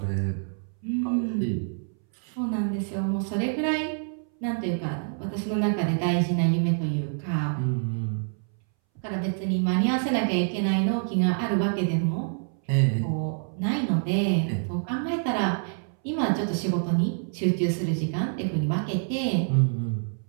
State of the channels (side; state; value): left; silent; 60 dB below the other